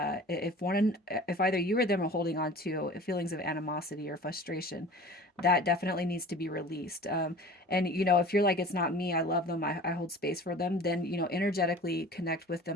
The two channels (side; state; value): both; normal; correlation 0.42